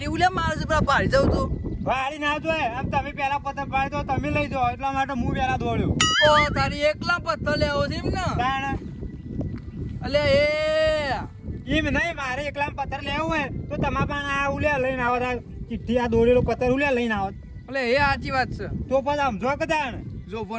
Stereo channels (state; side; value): identical; both; correlation 1.00